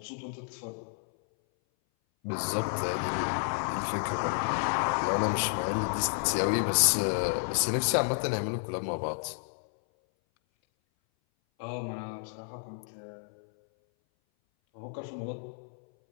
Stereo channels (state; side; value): silent; right; 57 dB below the other